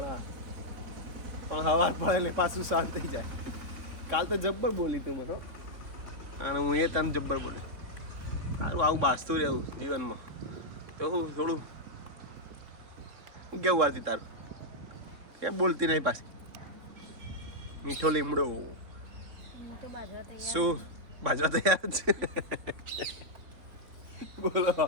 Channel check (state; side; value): late; left; 3.6 ms